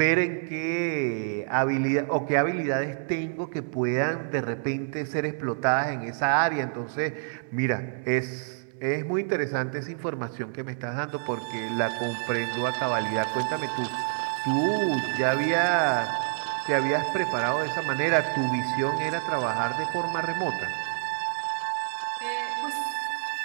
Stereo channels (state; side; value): silent; left; 60 dB below the other